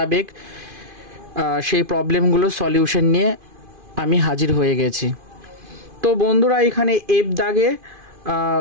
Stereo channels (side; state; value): left; late; 2.5 ms